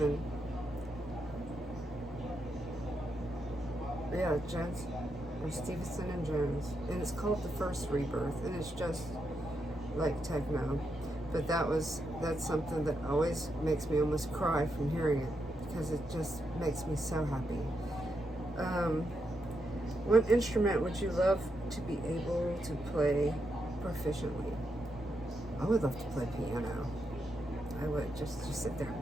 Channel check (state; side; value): normal; both; correlation 0.83